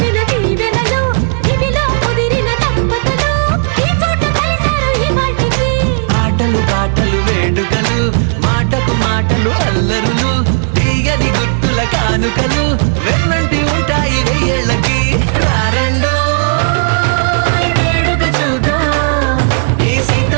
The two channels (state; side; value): silent; left; 63 dB below the other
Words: దీవెనలు, ఇవిలో కుదిరిన దంపతులు ఈ చోట కలిసారు ఈ వాటికి. ఆటలు పాటలు వేడుకలు, మాటకు మాటలు అల్లరులు, తీయని గుట్టుల కానుకలు వెన్నంటి ఉంటాయి వెయ్యేళ్ళకి. రారండో వేడుక చూద్దాం, ఈ